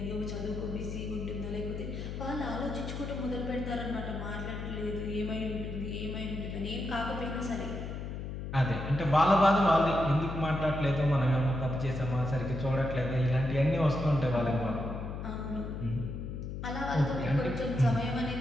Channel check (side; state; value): left; noise; hum, 6 dB below the sound